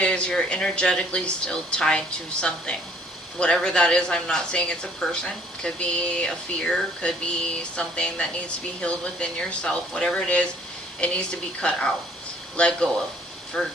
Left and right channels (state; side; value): normal; both; correlation 0.60